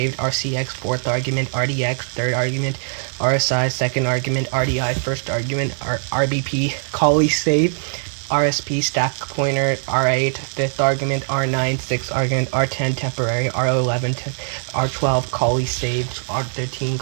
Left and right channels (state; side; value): silent; left; 65 dB below the other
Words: RCX fourth argument, RDX third argument, RSI second argument, RDI first argument, RBP callee saved, RSP stack pointer, R8 fifth argument, R9 sixth argument, R10 temporary, R11 R12 callee saved, R13